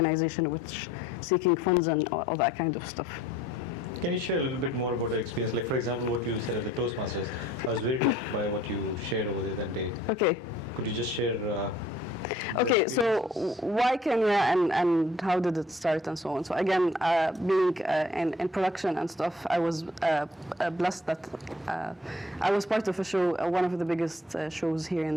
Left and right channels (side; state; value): both; normal; correlation 0.57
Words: which seeking funds and all that kind of stuff. Can you share a little bit more about the experience? Like, for example, what you said at the Toastmasters. I was very touched by what you shared over there that day. Okay. Could you just share? Okay, so why Kenya and how did it start and so on? So again, being in production and stuff, I was blessed that I was part of a show, one of the biggest shows here